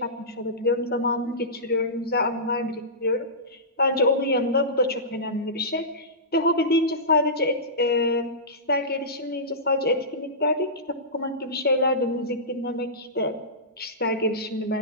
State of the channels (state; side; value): normal; both; correlation -0.18